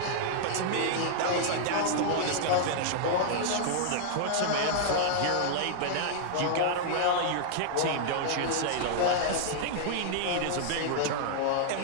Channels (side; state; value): both; different; correlation -0.01